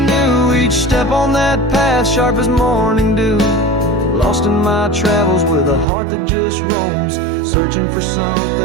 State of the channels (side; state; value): left; drops out; at 5.9 s